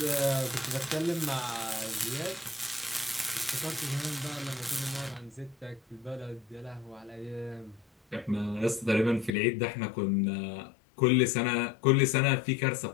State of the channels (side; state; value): right; drops out; at 9.3 s